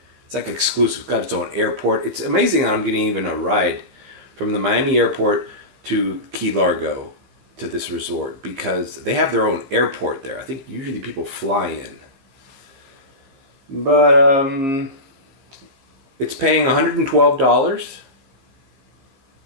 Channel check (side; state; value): left; late; 15 ms